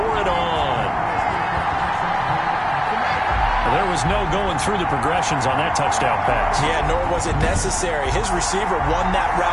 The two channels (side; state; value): both; identical; correlation 1.00